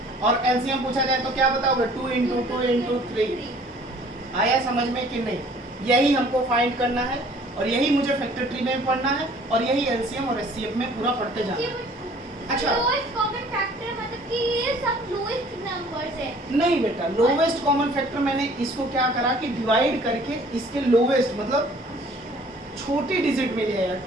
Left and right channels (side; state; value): both; normal; correlation 0.54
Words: और एलसीएम पूछा जाए तो क्या बताओगे? 2 × 2 × 3। आया समझ में कि नहीं? यही हमको फाइंड करना है और यही मुझे फैक्टर ट्री में पढ़ना है और यही एलसीएम और एचसीएफ में पूरा पढ़ते जाना है। अच्छा, लोएस्ट कॉमन फैक्टर मतलब कि ये सब लोएस्ट नंबर्स है। नहीं बेटा, लोवेस्ट कॉमन फैक्टर मैंने इसको क्या करा कि डिवाइड करके इसके लोवेस्ट मतलब छोटी डिजिट में लिया,